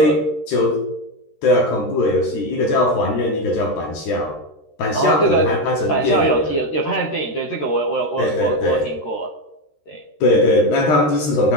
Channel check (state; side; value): late; right; 13 ms